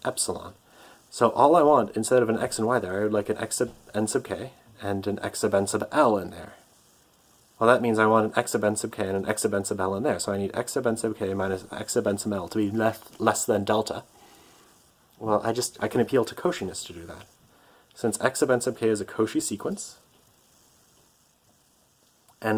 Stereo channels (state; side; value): identical; both; correlation 1.00